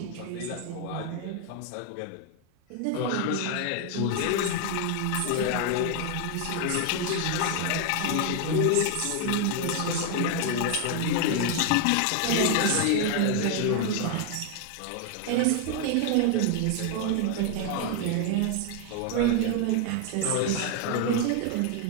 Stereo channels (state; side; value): different; both; correlation 0.00